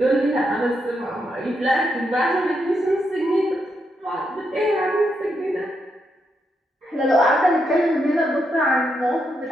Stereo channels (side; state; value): both; normal; correlation 0.81